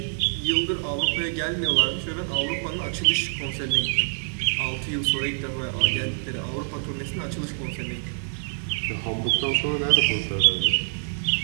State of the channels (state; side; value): silent; left; 56 dB below the other